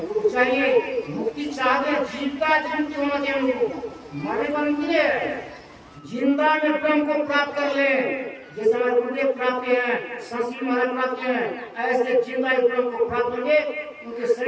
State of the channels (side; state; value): both; identical; correlation 1.00